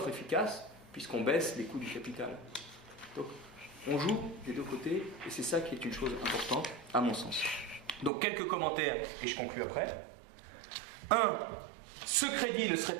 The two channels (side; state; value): left; drops out; at 8.1 s